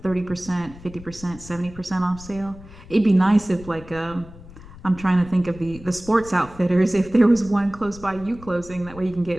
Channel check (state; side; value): noise; left; rumble, 18 dB below the sound